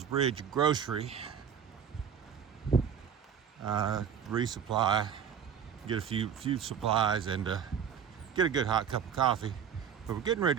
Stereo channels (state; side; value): quieter; left; 7.9 dB